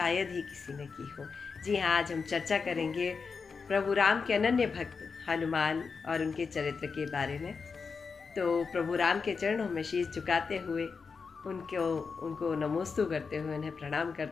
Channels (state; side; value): quieter; right; 5.2 dB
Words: ही किसी ने की हो। जी हाँ, आज हम चर्चा करेंगे प्रभु राम के अनन्य भक्त हनुमान और उनके चरित्र के बारे में। तो प्रभु राम के चरणों में शीश झुकाते हुए उनको नमोस्तु करते हुए, उन्हें प्रणाम